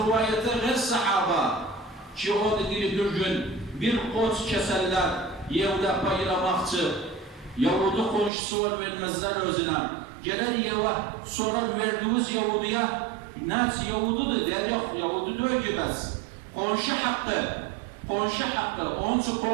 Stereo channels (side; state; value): left; drops out; at 8.3 s